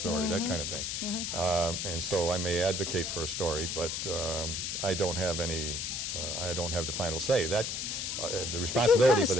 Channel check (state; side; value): noise; left; hiss, 2 dB below the sound